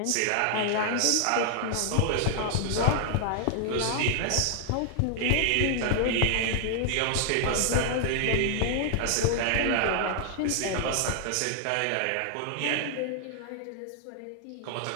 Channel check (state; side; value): different; both; correlation 0.00